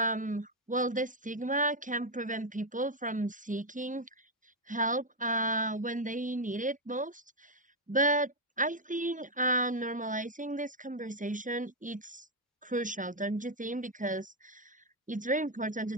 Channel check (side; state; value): both; normal; correlation 0.03